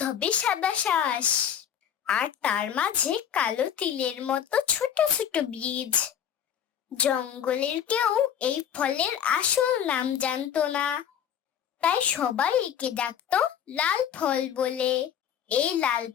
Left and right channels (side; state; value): right; quieter; 9.2 dB